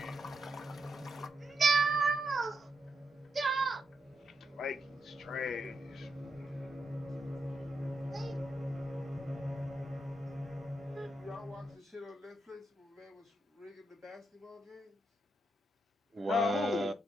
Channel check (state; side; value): normal; both; correlation 0.83